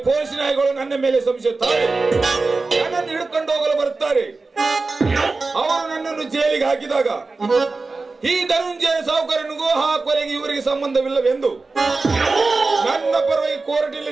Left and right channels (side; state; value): left; quieter; 3.8 dB